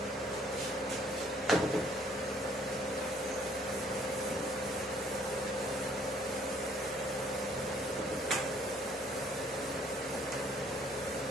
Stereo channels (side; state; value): both; normal; correlation 0.61